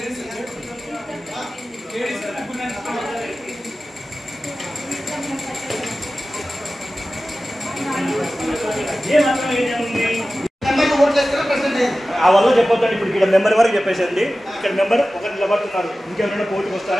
ఆ వల్ల చెప్పొద్దండి. ఇప్పుడు ఇక్కడ మెంబర్ వరకు చెప్పేసండి. ఇక్కడ మెంబర్ ఒకరు నిలబడుతున్నారు. ఇంకెవరైనా కోర్టుకు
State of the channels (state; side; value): normal; both; correlation 0.95